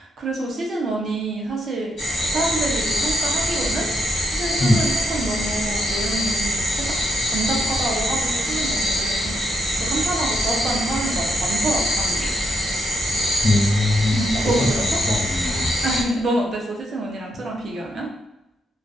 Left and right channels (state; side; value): normal; both; correlation 0.79